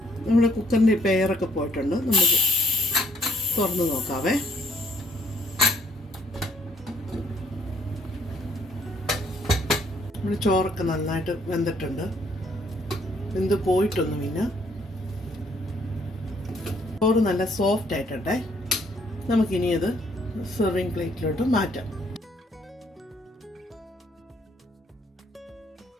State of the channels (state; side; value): normal; both; correlation 0.66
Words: നമ്മുടെ കുക്കറിൻ്റെ പെയറൊക്കെ പോയിട്ടുണ്ട്. നമുക്ക് തുറന്ന് നോക്കാവേ. നമ്മുടെ ചോറൊക്കെ നന്നായിട്ട് വെന്തിട്ടുണ്ട്. വെന്ത് പോയിട്ടൊന്നുമില്ല. ചോറ് നല്ല സോഫ്റ്റ് ആയിട്ടെ. നമുക്കിനി അത് സെർവിങ് പ്ലേറ്റിലോട്ട് മാറ്റാം.